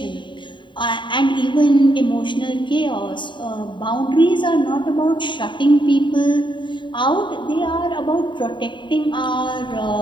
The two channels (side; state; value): right; late; 0.23 ms